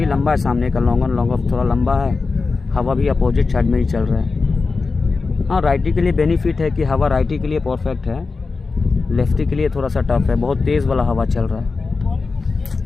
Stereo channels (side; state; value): right; quieter; 4.2 dB